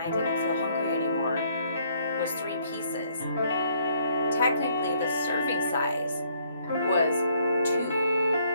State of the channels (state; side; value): inverted; both; correlation -0.66